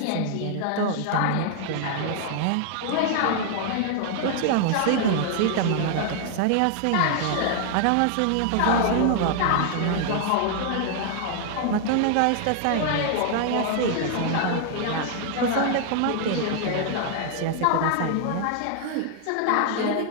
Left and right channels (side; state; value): both; different; correlation 0.00